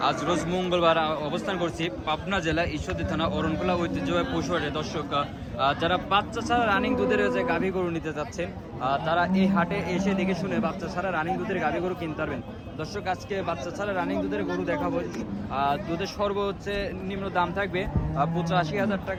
আজ রোজ মঙ্গলবার অবস্থান করছি পাবনা জেলা ঈশ্বরদী থানা অরণখোলা ঐতিহ্যবাহী পশুহাটে। দর্শক, যারা বাচ্চা ছাড়া রানিং দুধের যে গাভী গরু নিতে যাচ্ছেন তারা এই হাটে এসে দেখে শুনে বাচ্চা ছাড়া রানিং দুধের গাভী গরু কিনতে পারবেন। দর্শক, আজকে বাচ্চা ছাড়া রানিং দুধের গরু দেখাবো। দুধের সর্বোচ্চ নিম্ন দাম থাকবে 85,000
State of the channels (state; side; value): identical; both; correlation 1.00